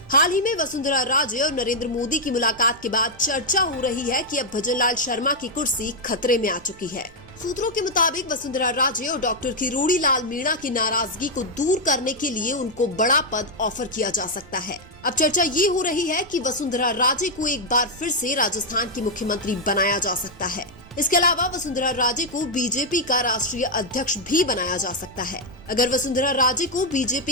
हाल ही में वसुंधरा राजे और नरेंद्र मोदी की मुलाकात के बाद चर्चा हो रही है कि अब भजनलाल शर्मा की कुर्सी खतरे में आ चुकी है। सूत्रों के मुताबिक वसुंधरा राजे और डॉक्टर किरोड़ी लाल मीणा की नाराजगी को दूर करने के लिए उनको बड़ा पद ऑफर किया जा सकता है। अब चर्चा ये हो रही है कि वसुंधरा राजे को एक बार फिर से राजस्थान की मुख्यमंत्री बनाया जा सकता है। इसके अलावा वसुंधरा राजे को बीजेपी का राष्ट्रीय अध्यक्ष भी बनाया जा सकता है। अगर वसुंधरा राजे को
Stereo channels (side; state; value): right; noise; rumble, 22 dB below the sound